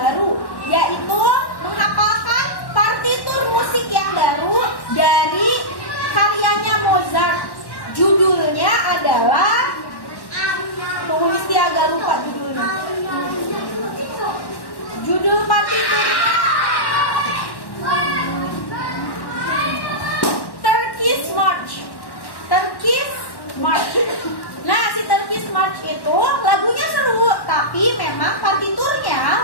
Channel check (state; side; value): late; right; 1.1 ms